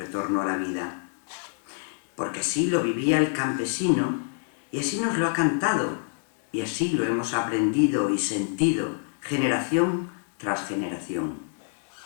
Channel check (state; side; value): silent; right; 60 dB below the other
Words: a la vida. Porque así lo vivía el campesino, y así nos lo ha cantado, y así lo hemos aprendido y sentido, generación tras generación.